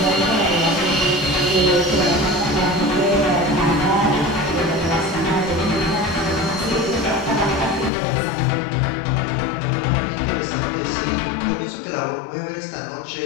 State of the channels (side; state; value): right; drops out; at 7.9 s